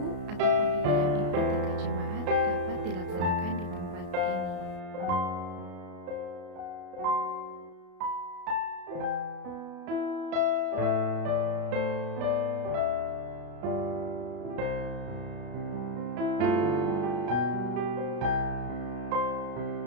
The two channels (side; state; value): left; late; 33 ms